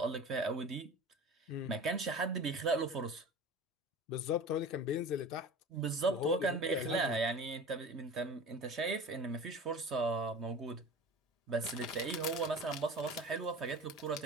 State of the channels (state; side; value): normal; both; correlation 0.36